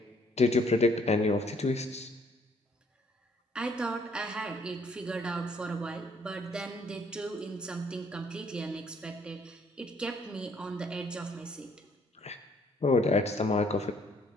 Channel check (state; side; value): normal; both; correlation 0.65